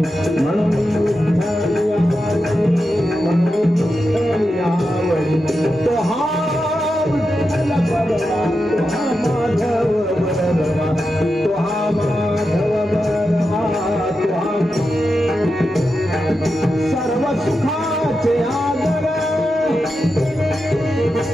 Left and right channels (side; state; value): both; normal; correlation 0.89